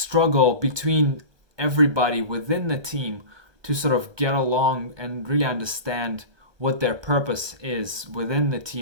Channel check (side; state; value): left; late; 1.2 ms